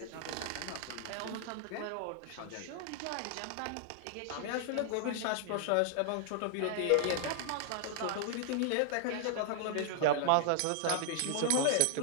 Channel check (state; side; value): different; both; correlation 0.00